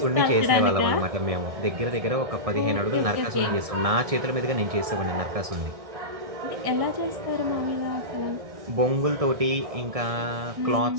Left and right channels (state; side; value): late; left; 1.6 ms